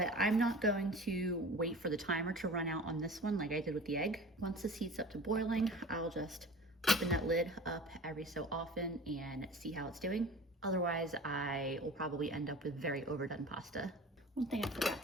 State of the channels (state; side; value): normal; both; correlation 0.39